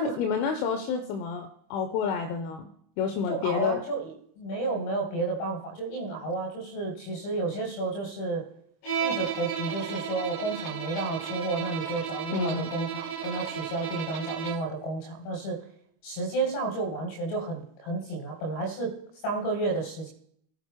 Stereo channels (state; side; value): late; right; 25 ms